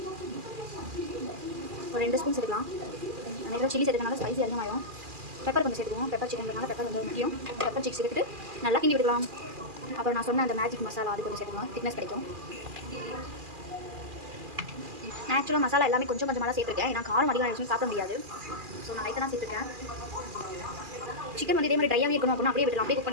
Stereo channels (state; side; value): late; left; 2.4 ms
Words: ஒரு 2 ஸ்பூன் சேர்த்துக்கலாம். நிறைய சில்லி சேர்த்துக்கனால ஸ்பைசி அதிகமாகும். பெப்பர் கொஞ்சம் சேர்த்துக்குவோம். பெப்பர் சிக்கன் பெப்பர் கொஞ்சம் முக்கியம். பெப்பர் சிக்ஸ் சேர்த்துட்டு நல்லா கிண்டி விட்டுக்கலாம். அப்புறம் நான் சொன்ன அந்த மேஜிக் மசாலா அது கொஞ்சம் சேர்த்துக்கலாம், திக்னஸ் கிடைக்கும். ஆக்சுவலாக மசாலா எல்லாமே கொஞ்சம் கொஞ்சமாக தான் சேர்த்துருக்கேன், ஏன்னா காரம் அதிகம் ஆயிடுச்சுன்னு சாப்பிட முடியாது. ஸோ நான் லைட்டாக தான் சேர்த்துருக்கேன். சிக்கன் வந்து இதே மாதிரி ட்ரையாகவே இருக்கணும் அப்படின்னா அப்படியே விடலாம், அப்படியே குக்